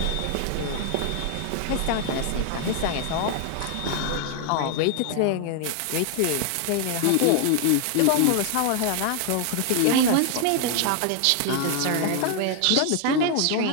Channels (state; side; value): different; both; correlation 0.00